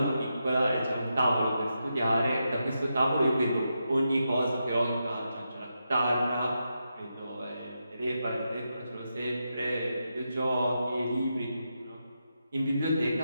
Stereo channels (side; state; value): both; inverted; correlation -0.86